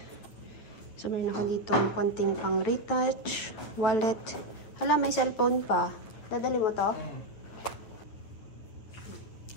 So meron ako dito ang konting pang retouch, wallet. Hala, may cellphone pa. Dadali mo to?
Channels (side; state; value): right; late; 9.4 ms